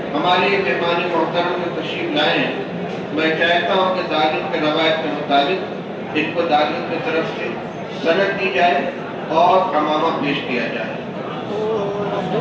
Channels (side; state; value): both; identical; correlation 1.00